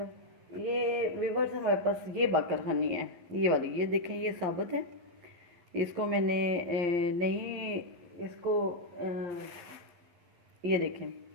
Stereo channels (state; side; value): late; left; 11 ms